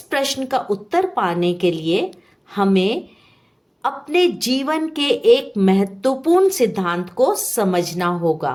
प्रश्न का उत्तर पाने के लिए हमें अपने जीवन के एक महत्वपूर्ण सिद्धांत को समझना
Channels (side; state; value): both; identical; correlation 1.00